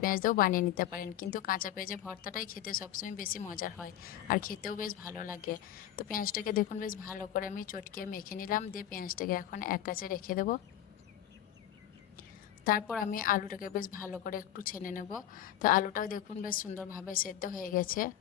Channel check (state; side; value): quieter; right; 11.7 dB